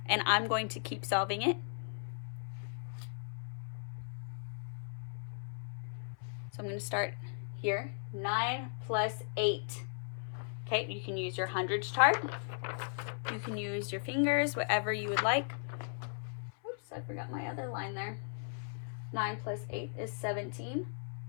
And I'm going to keep solving it. So I'm going to start here. 9 plus 8. Okay, you can use your hundreds chart. You can use your fingers, whatever you would like. Oops, I forgot my other line there. 9 plus 8 is 17.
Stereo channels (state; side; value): silent; right; 53 dB below the other